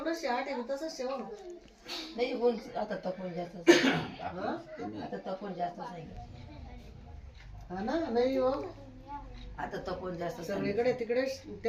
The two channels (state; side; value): identical; both; correlation 1.00